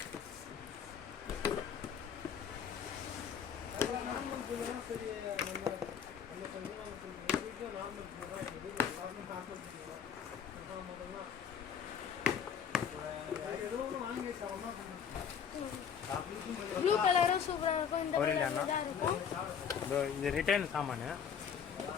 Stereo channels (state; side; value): quieter; right; 7.6 dB